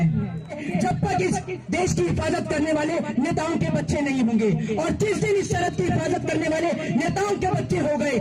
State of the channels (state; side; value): identical; both; correlation 1.00